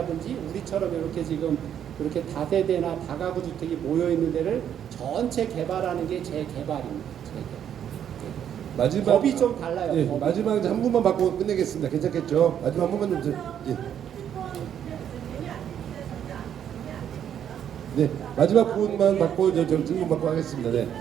우리처럼 이렇게 지금 이렇게 다세대나 다가구 주택이 모여 있는 데를 전체 개발하는 게 재개발입니다. 마지막 법이 좀 달라요. 예, 법이. 마지막 이제 한 분만 받고 끝내겠습니다. 괜찮겠죠? 마지막 한 분만 좀 예. 네, 마지막 분만 받고 이제 저 질문 받고 하겠습니다. 네.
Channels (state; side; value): quieter; left; 9.4 dB